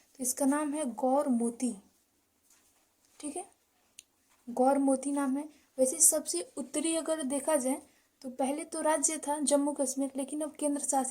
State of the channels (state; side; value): identical; both; correlation 1.00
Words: तो इसका नाम है गौर मोती। ठीक है, गौर मोती नाम है। वैसे सबसे उत्तरी अगर देखा जाए तो पहले तो राज्य था जम्मू कश्मीर, लेकिन अब केंद्र